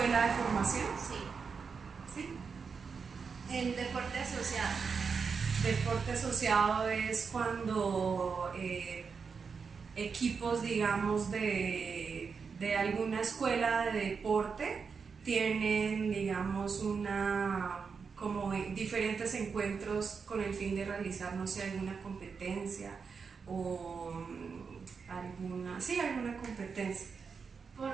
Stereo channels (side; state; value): left; quieter; 5.6 dB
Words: de formación. Sí. ¿Sí? El deporte asociado. Deporte asociado es cuando equipos, digamos, de alguna escuela de deporte tienen, digamos, como diferentes encuentros con el fin de realizar, no sé, alguna competencia o alguna competencia.